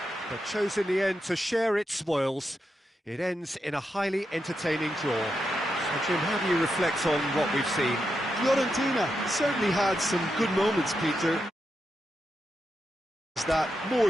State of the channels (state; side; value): normal; both; correlation 0.85